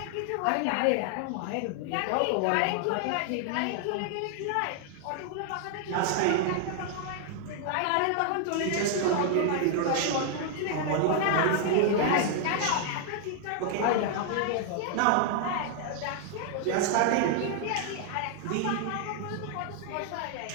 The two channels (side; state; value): both; different; correlation 0.00